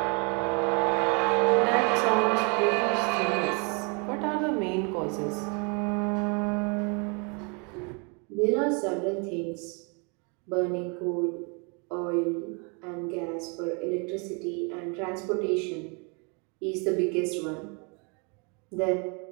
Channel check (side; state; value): left; quieter; 34.0 dB